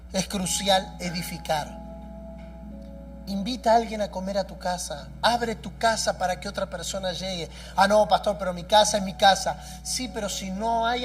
es crucial edificar. Invita a alguien a comer a tu casa. Abre tu casa para que otra persona llegue. Ah, no, pastor, pero mi casa es mi casa. Sí, pero si no hay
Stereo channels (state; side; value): identical; both; correlation 1.00